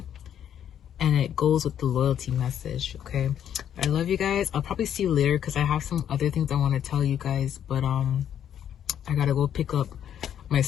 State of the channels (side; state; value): right; quieter; 9.7 dB